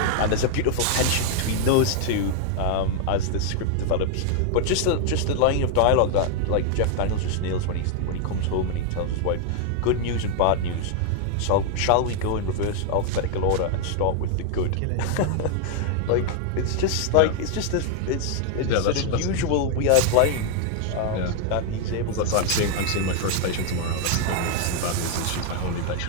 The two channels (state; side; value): different; both; correlation 0.00